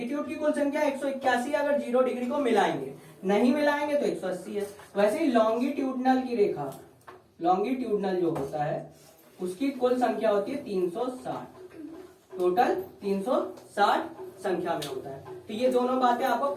की कुल संख्या 181, अगर 0 डिग्री को मिलाएंगे, नहीं मिलाएंगे तो 180 है। वैसे ही लॉन्गिट्यूडनल की रेखा, लॉन्गिट्यूडनल जो होता है उसकी कुल संख्या होती है 360, टोटल 360 संख्या में होता है। तो ये दोनों बातें आपको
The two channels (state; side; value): identical; both; correlation 1.00